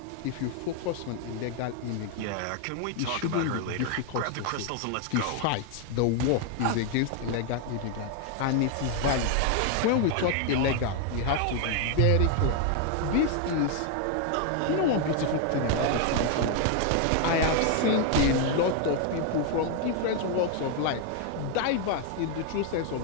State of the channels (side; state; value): both; different; correlation 0.01